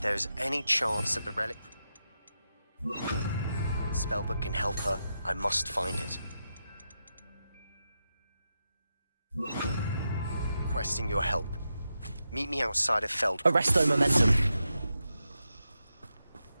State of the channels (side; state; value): both; inverted; correlation -0.88